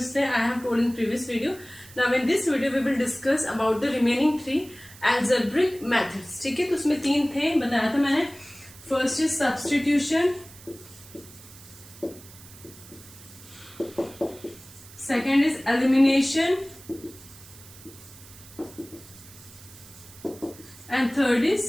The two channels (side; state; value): right; noise; hiss, 20 dB below the sound